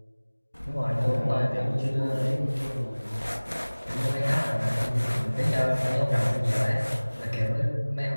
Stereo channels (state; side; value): inverted; both; correlation -1.00